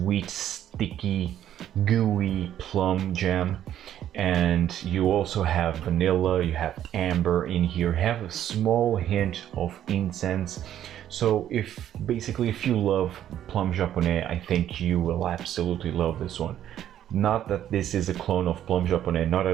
sticky, gooey plum jam. And you also have vanilla, you have amber in here, have a small hint of incense. So if you love plum japonais, I think you will absolutely love this one. Not that this is a clone of plum japonais, not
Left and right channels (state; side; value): quieter; left; 11.1 dB